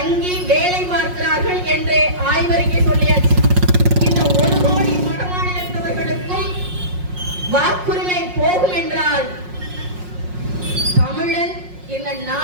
வேலை பார்க்கிறார்கள் என்று ஆய்வறிக்கை சொல்லியாச்சு. இந்த 1 கோடி வட மாநிலத்தவர்களுக்கும் வாக்குரிமை போகும் என்றால் தமிழன் இந்த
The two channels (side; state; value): left; late; 5.5 ms